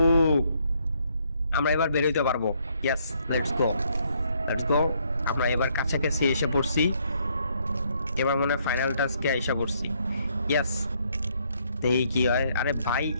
আমরা এবার বের হইতে পারবো। ইয়েস, লেটস গো, লেটস গো। আমরা এবার কাছাকাছি এসে পড়ছি, এবার মনে হয় ফাইনাল টাস্কে এসে পড়ছি। ইয়েস, এই কি হয়? আরে ভাই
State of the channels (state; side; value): inverted; both; correlation -0.70